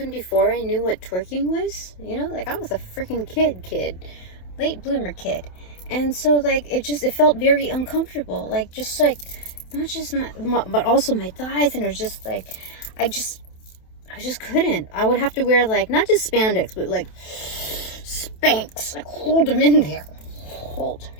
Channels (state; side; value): late; right; 27 ms